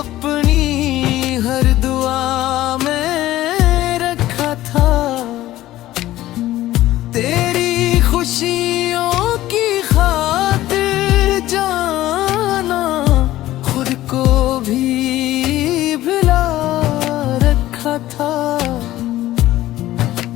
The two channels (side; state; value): right; quieter; 15.2 dB